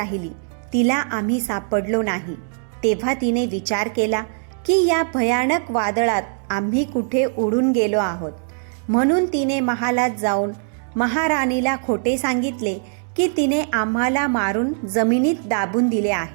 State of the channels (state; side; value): silent; left; 62 dB below the other